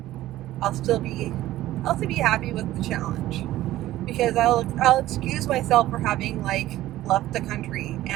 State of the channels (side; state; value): left; quieter; 15.0 dB